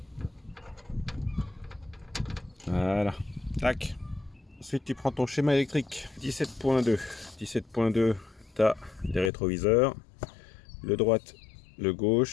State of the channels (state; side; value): drops out; right; at 9.3 s